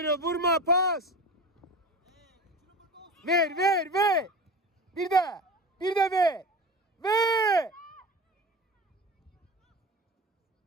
vurma pas. Ver, ver, ver. Bir de ver. Ver.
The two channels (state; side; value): normal; both; correlation 0.31